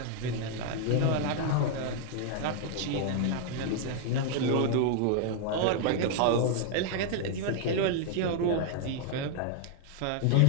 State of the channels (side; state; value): both; different; correlation 0.00